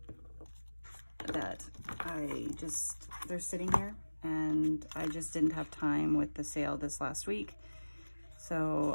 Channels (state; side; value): inverted; both; correlation -1.00